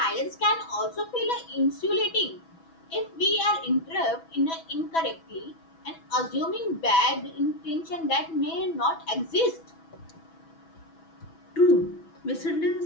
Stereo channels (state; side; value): late; right; 6.1 ms